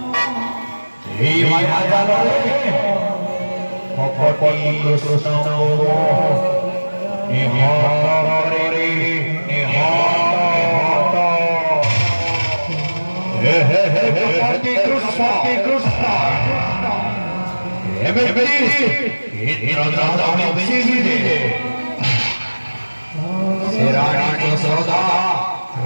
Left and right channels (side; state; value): both; inverted; correlation -1.00